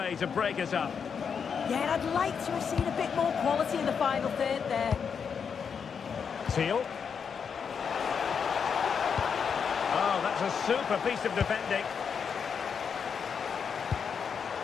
to break us up. Yeah, and I'd like to have seen a bit more quality in the final third there. Teal. Oh, that's a super piece of defending.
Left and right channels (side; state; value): right; quieter; 6.6 dB